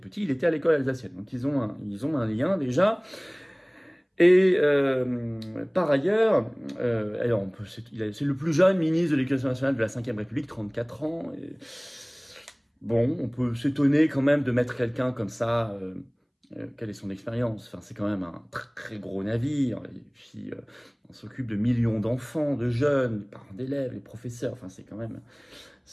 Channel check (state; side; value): identical; both; correlation 1.00